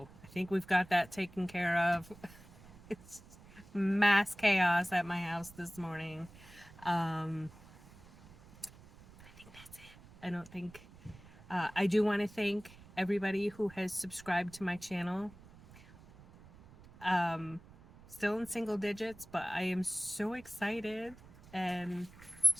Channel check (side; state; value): right; noise; rumble, 21 dB below the sound